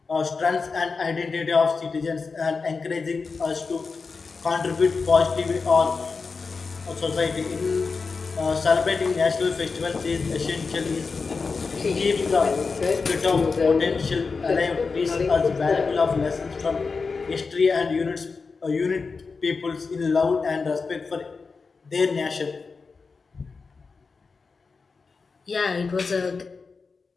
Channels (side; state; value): right; quieter; 4.6 dB